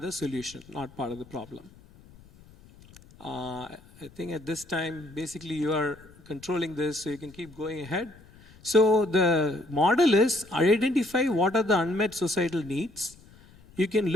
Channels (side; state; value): left; noise; rumble, 24 dB below the sound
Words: solution, not part of the problem. I think at this time, basically you are controlling this so you can keep going ahead. So the model is identify what are the unmet societal needs. You can